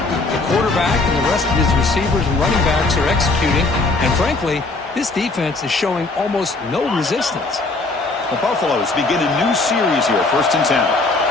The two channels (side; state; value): right; quieter; 3.4 dB